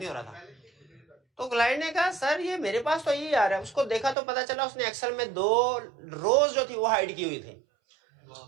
हो रहा था। तो क्लाइंट ने कहा सर ये मेरे पास तो यही आ रहा है। उसको देखा तो पता चला उसने एक्सेल में 2 रोज जो थी वो हाइड की हुई थी।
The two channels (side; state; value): left; drops out; at 4.2 s